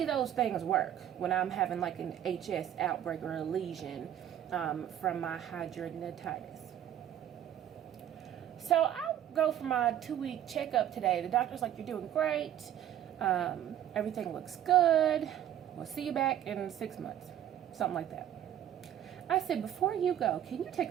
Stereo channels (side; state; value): left; quieter; 11.0 dB